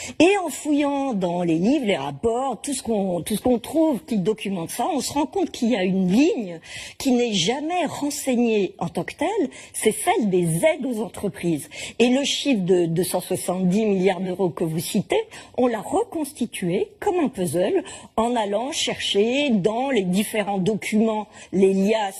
Et en fouillant dans les livres, les rapports, tout ce qu'on trouve qui documente ça, on se rend compte qu'il y a une ligne qui n'est jamais renseignée en tant que telle, c'est celle des aides aux entreprises. Et le chiffre de 270 milliards d'euros que vous citez, on l'a reconstitué comme un puzzle en allant chercher dans les différents documents, les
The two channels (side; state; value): both; identical; correlation 1.00